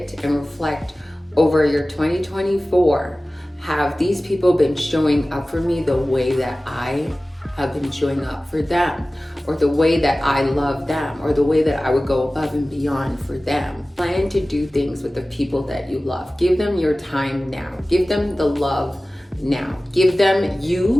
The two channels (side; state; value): both; normal; correlation 0.97